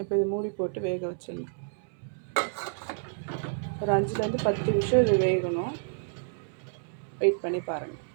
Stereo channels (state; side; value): silent; left; 58 dB below the other